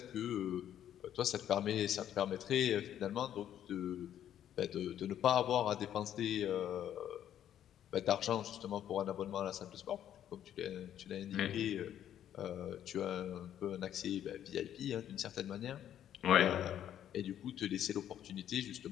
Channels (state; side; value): quieter; right; 10.6 dB